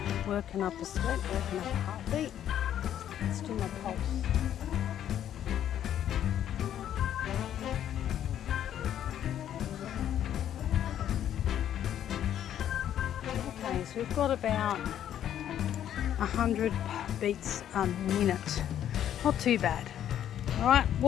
working up a sweat, working up a heartbeat. Let's do my pulse. Okay, so we've got about 100 beats a minute. Not too bad. All right,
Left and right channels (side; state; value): right; quieter; 10.6 dB